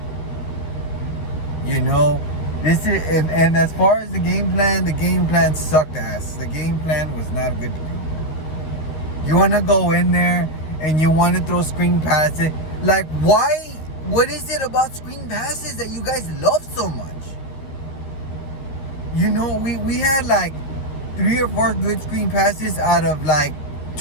You know, this is, and as far as the game plan sucked ass. The game plan was not good to do. You want to go in there and you want to throw screen passes. Like, why? What is it about screen passes that you guys love so much? You know, we had like 3 or 4 good screen passes out of like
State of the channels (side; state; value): right; late; 13 ms